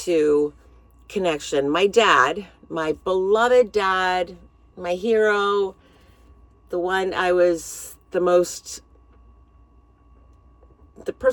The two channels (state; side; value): identical; both; correlation 1.00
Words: connection. My dad, my beloved dad, my hero, the one I was the